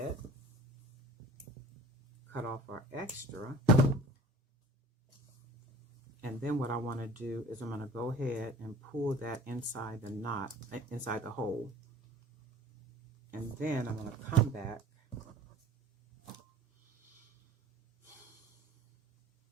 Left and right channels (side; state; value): both; normal; correlation 0.45